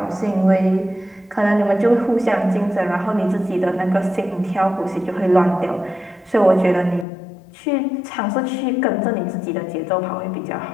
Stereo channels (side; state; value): right; drops out; at 7.1 s